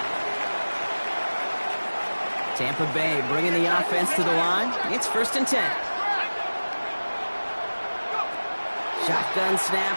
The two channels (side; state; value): both; inverted; correlation -1.00